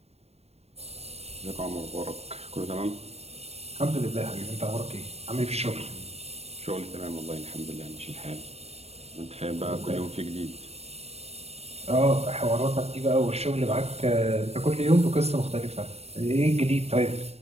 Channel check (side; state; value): left; late; 0.30 ms